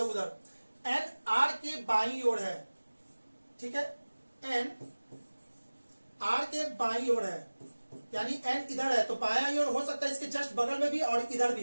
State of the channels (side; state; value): both; inverted; correlation -1.00